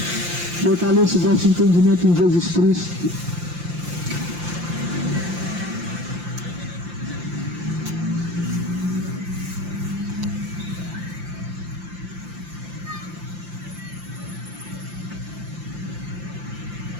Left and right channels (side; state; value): left; late; 5.8 ms